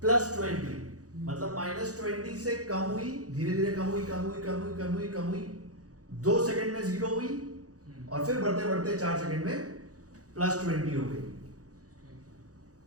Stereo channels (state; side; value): late; left; 0.67 ms